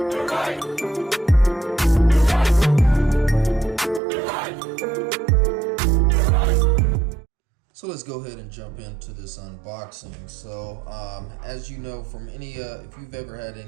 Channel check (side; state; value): left; drops out; at 4.0 s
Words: So let's go ahead and jump into this unboxing. So as you know from any, if you've ever had